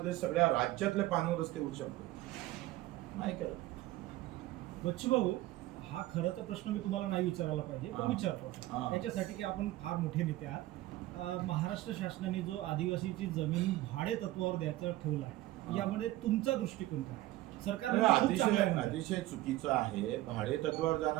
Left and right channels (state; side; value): quieter; left; 16.6 dB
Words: सगळ्या राज्यातले पाणंद रस्ते होऊ शकतो, नाही करत. बच्चू भाऊ, हा खरं तर प्रश्न मी तुम्हाला नाही विचारायला पाहिजे, पण विचारतो आता. याच्यासाठी की आपण फार मोठे नेते आहात. महाराष्ट्र शासनाने जो आदिवासीची जमीन भाडे तत्वावर द्यायचं ठेवलं आहे, यामध्ये तुमचा दृष्टिकोन काय आहे? सरकार अतिशय चुकीचं आहे. भाडे तत्वावर जाणं